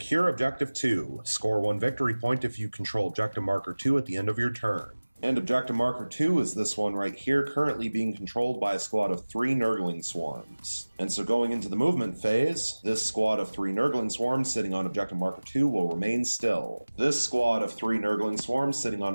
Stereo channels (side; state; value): both; inverted; correlation -1.00